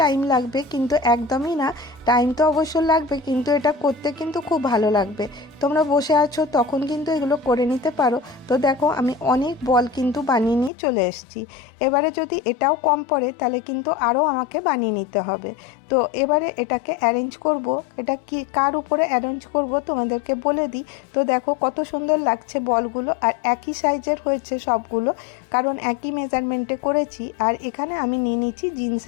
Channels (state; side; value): drops out; right; at 10.7 s